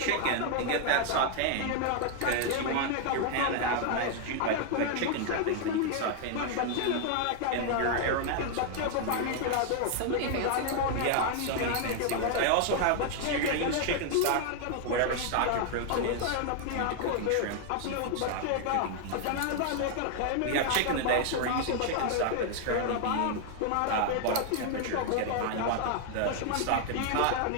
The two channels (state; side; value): different; both; correlation 0.00